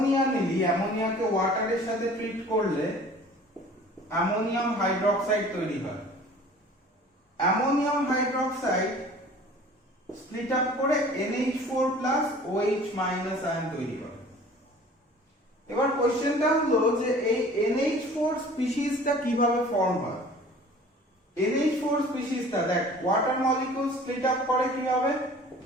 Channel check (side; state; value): both; normal; correlation 0.47